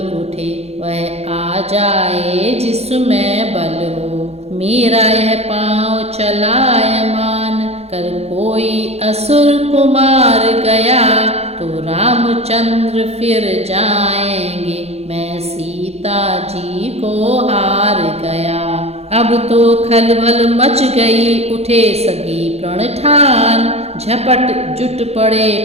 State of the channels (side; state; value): left; late; 0.30 ms